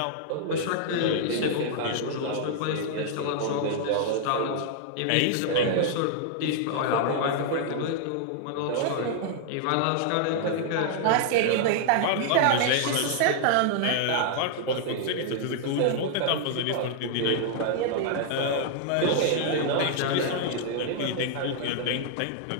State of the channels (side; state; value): both; different; correlation -0.01